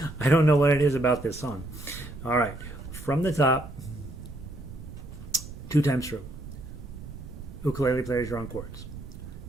I don't know what it is about this song. All right, from the top, 2 times through. Ukulele players, you're on chords.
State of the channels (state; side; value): noise; right; rumble, 13 dB below the sound